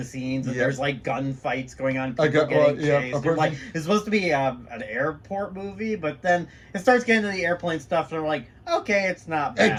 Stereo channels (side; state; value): both; identical; correlation 1.00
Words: scenes, and there's, like, gunfights going on, people getting chased. Like, it's supposed to be an airport movie, but then it starts getting to the airplane stuff, and we're like, okay, it's not bad. And